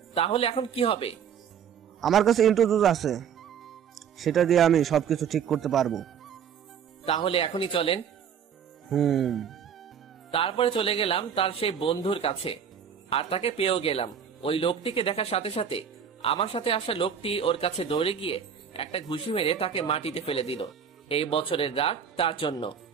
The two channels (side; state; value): left; quieter; 7.7 dB